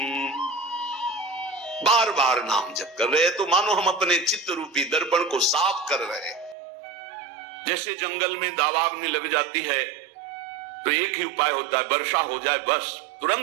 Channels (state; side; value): drops out; left; at 6.6 s